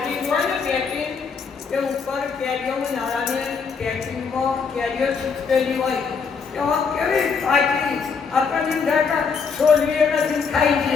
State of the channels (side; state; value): right; quieter; 5.6 dB